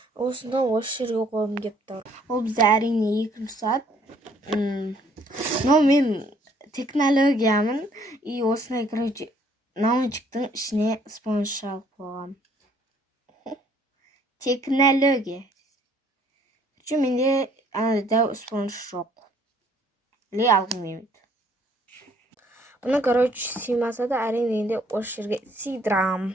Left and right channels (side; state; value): both; normal; correlation 0.62